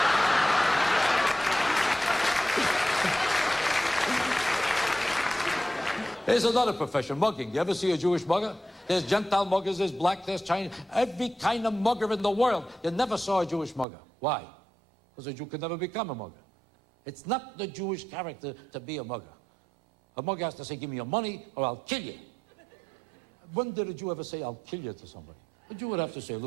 There's another profession, mugging. You ever see a Jewish mugger? There's Gentile muggers, there's black, there's Chinese, every kind of mugger in the world. You never saw a Jewish mugger. Why? Because a Jew could never become a mugger. It's not the Jewish character to be a mugger. A mugger has to say, give me your money or I'll kill you. When did a Jew ever say, I'll kill you to somebody? A Jew would have to say,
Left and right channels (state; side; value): drops out; left; at 13.9 s